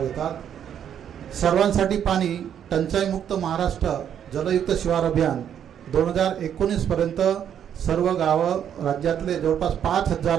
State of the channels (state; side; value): quieter; left; 9.2 dB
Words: घेतात। सर्वांसाठी पाणी टंचाईमुक्त महाराष्ट्र जलयुक्त शिवार अभियान 2019 पर्यंत सर्व गावं राज्यातले जवळपास